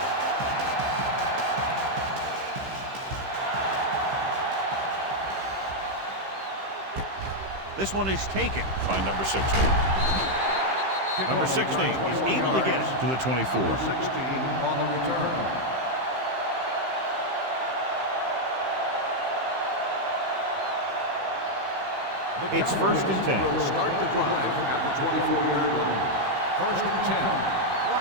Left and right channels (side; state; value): left; late; 15 ms